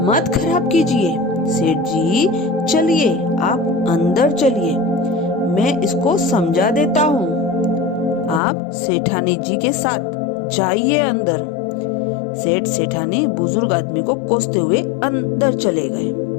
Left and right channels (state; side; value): drops out; right; at 8.4 s